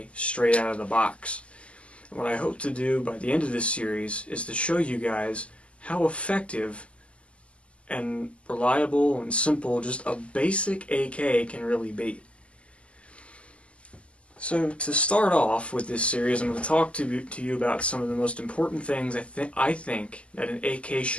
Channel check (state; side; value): late; right; 0.058 ms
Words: straight out of the box. And what I hope to do by the end of this series is to show you guys how effective and reliable and simple just a basic AK can really be. So to start off with this series, I'm going to talk to you about some of the most important things I think that an AK